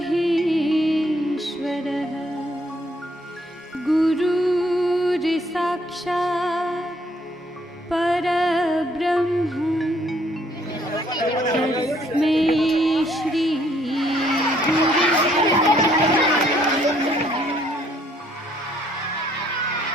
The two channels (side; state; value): both; normal; correlation 0.66